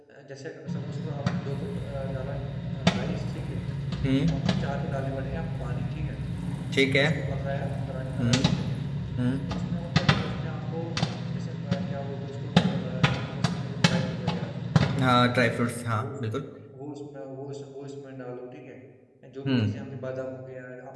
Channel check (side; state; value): both; identical; correlation 1.00